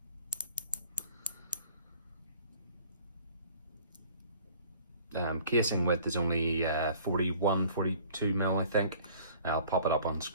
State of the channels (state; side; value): inverted; both; correlation -0.52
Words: Casing width is only 42 mil, I think. I'll pop it up on